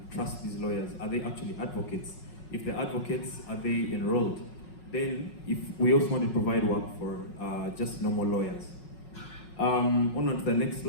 trust these lawyers. Are they actually advocates? If they're advocates, are they enrolled? Then, if we also want to provide work for just normal lawyers. On to the next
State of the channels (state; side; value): late; right; 5.4 ms